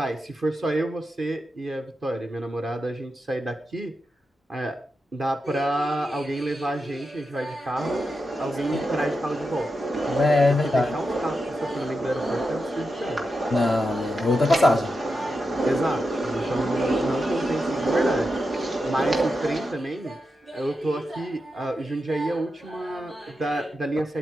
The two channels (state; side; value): normal; both; correlation 0.88